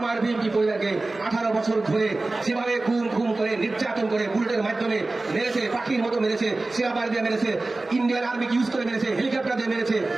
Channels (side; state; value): left; quieter; 3.1 dB